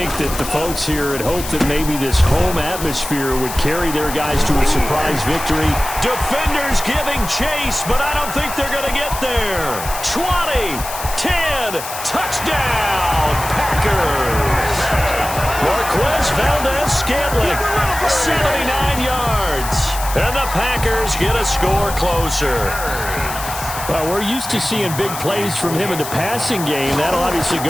that the folks here had hoped that maybe this home atmosphere would carry their guys to a surprise victory. Defenders giving chase, but I don't think they're going to get there. 20, 10, touchdown, Packers. Marquez Valdez-Scantling, 79 yards. And the Packers get a score closer. Well, we're used to seeing big plays from him in the passing game. That'll obviously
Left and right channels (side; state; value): left; noise; hiss, 9 dB below the sound